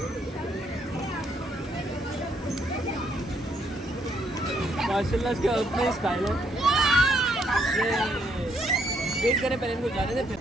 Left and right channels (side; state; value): both; normal; correlation 0.72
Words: माशाल्लाह इसके अपने स्टाइल है। वेट करें पहले इनको जाने दें, फिर